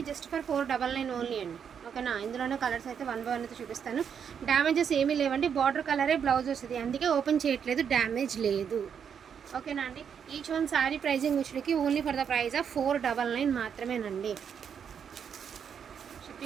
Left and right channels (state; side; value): quieter; left; 7.5 dB